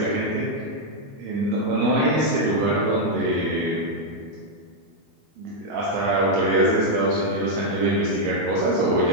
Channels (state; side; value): late; left; 22 ms